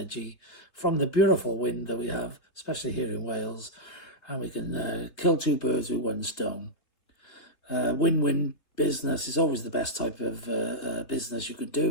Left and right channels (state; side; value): late; right; 3.2 ms